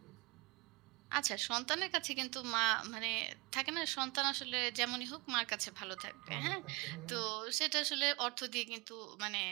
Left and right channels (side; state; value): left; quieter; 26.6 dB